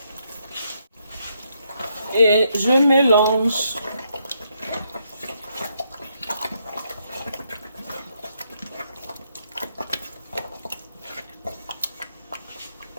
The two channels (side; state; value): both; inverted; correlation -0.76